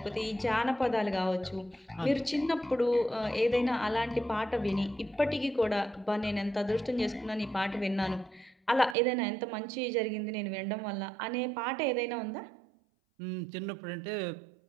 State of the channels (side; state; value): left; drops out; at 9.0 s